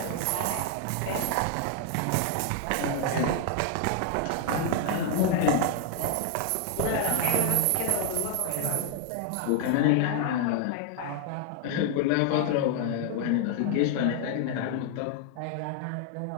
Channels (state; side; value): different; both; correlation 0.00